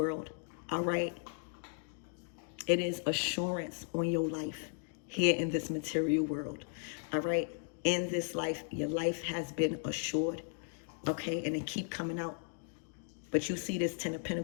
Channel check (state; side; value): silent; right; 54 dB below the other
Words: All right. It is assurance on your life here in this material world. All right. In this life, your life has been assured. Okay. And it keep coming out. But you see this Ten of